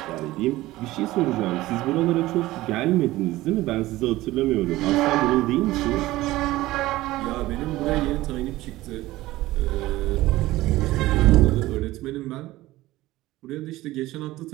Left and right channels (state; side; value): quieter; left; 17.4 dB